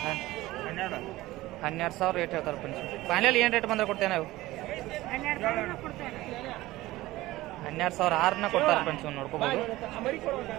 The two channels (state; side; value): quieter; left; 17.8 dB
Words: 12,000 ರೇಟ್ ಹೇಳ್ತಾರೆ ಫ್ರೆಂಡ್ಸ್. ಫೈನಲ್ ಏನು ರೇಟ್ ಬಂದ್ರೆ ಕೊಡ್ತೇವೆ ನಾವು? 12,600 ಕೊಡ್ತಾರೆ ಫ್ರೆಂಡ್ಸ್. ನೋಡ್ಕೋಬೋದು.